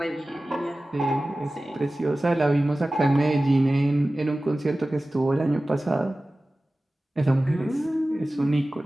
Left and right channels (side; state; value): both; normal; correlation 0.96